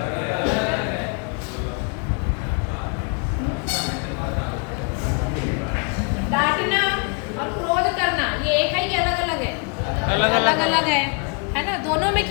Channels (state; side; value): quieter; right; 35.3 dB